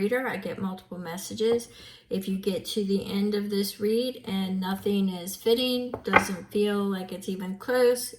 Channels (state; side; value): identical; both; correlation 1.00